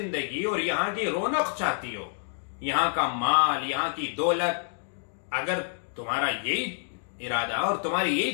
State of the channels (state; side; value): silent; right; digital silence